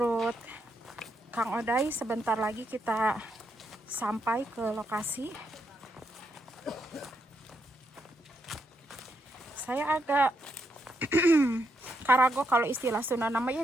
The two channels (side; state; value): both; normal; correlation 0.79